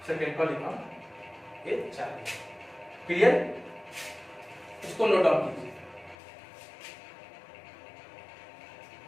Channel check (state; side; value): drops out; right; at 6.2 s